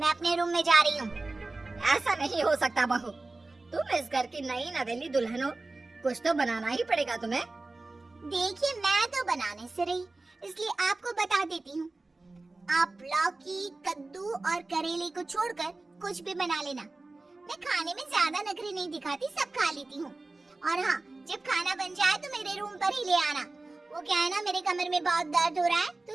अपने रूम में जा रही हूँ। ऐसा नहीं हो सकता बहू, तुम इस घर की नई नवेली दुल्हन हो, कुछ तो बनाना ही पड़ेगा तुम्हें। देखिए, मैं तो बनाने से रही, इसलिए आपको बता देती हूँ। आप लौकी, कद्दू और करेले को छोड़कर कुछ भी बना लेना। मैं खाने में ज्यादा नखरे नहीं दिखाती, सब खा लेती हूँ। और हाँ, जब खाना बन जाए तो मेरे रूम पर ही ले आना। वो क्या है ना, मेरे कमर में बहुत दर्द हो रहा है तो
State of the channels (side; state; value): left; quieter; 3.2 dB